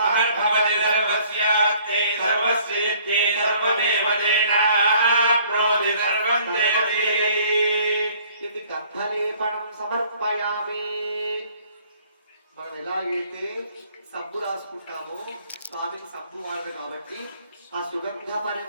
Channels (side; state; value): both; inverted; correlation -0.58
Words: సర్వస్యాప్తే సర్వస్యేత్తే సర్వదేవ తేనాప్నోతి సర్వం దేవీ ఇది గంధలేపనం సమర్పయామి. మనం ఎలాగైతే సబ్బు రాసుకుంటామో స్వామికి సబ్బు వాడదు కాబట్టి ఆ సుగంధ